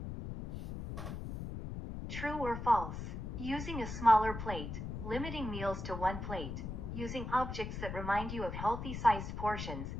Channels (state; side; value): noise; left; rumble, 6 dB below the sound